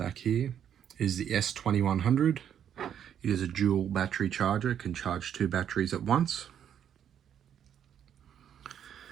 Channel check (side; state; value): left; quieter; 9.2 dB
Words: here, is the S2100. It is a dual battery charger, it can charge two batteries at once.